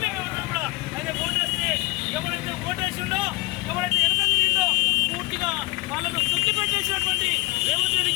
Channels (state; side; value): quieter; right; 22.7 dB